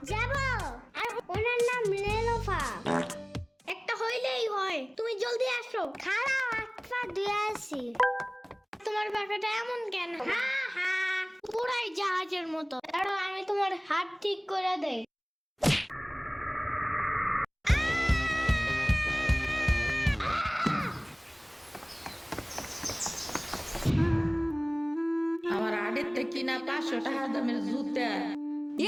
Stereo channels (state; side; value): identical; both; correlation 1.00